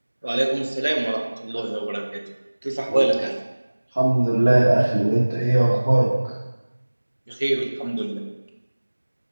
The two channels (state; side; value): inverted; both; correlation -1.00